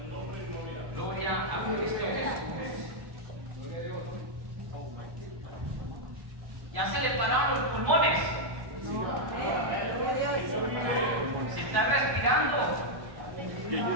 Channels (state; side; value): late; left; 1.1 ms